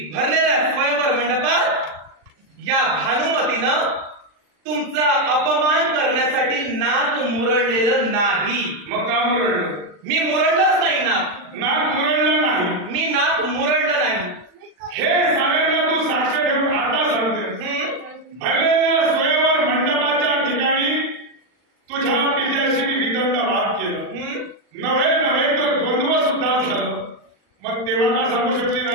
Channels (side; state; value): left; late; 40 ms